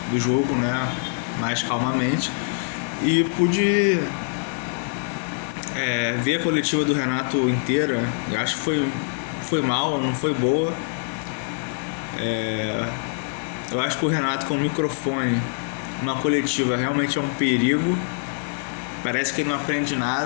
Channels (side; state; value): right; silent; digital silence